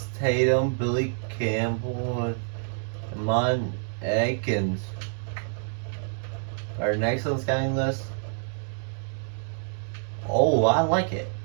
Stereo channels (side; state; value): left; silent; 60 dB below the other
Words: Tatum, Billy Campbell, and Mon Atkins are next on the scouting list. Oh, I like it.